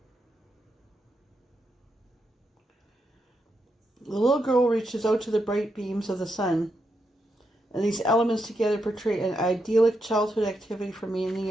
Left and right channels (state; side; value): normal; both; correlation 0.83